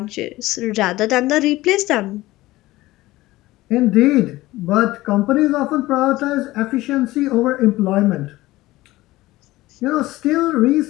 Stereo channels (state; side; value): quieter; right; 18.0 dB